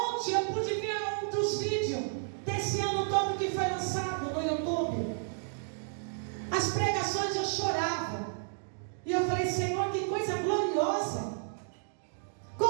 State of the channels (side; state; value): left; silent; digital silence